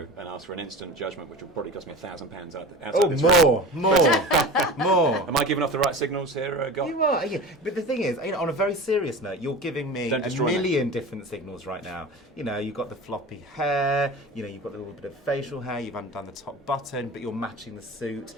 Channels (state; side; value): normal; both; correlation 0.34